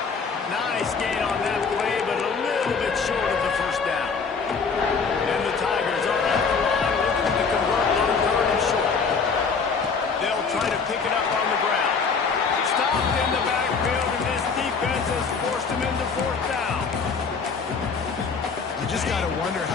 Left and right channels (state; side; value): quieter; right; 5.2 dB